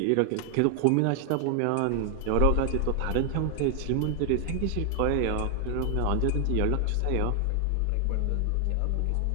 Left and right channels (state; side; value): different; both; correlation 0.00